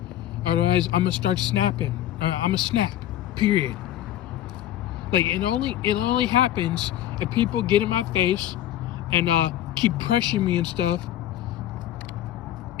Otherwise, I'm gonna start snapping. I'm gonna snap. Period. Like, it only happens if people get in my face and keep pressuring me and stuff,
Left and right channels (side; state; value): right; quieter; 12.6 dB